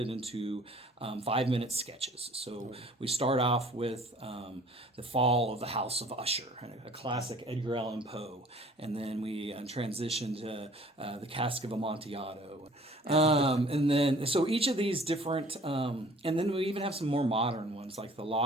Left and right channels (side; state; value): both; normal; correlation 0.52